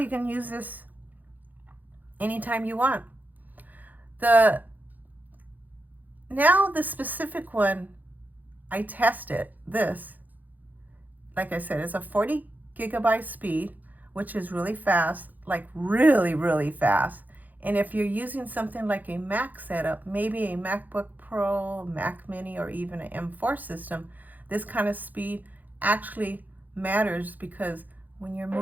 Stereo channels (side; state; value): left; late; 0.083 ms